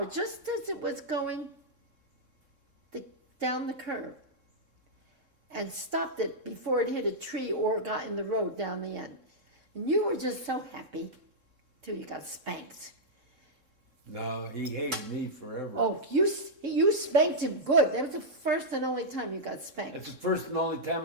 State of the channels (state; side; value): late; left; 3.7 ms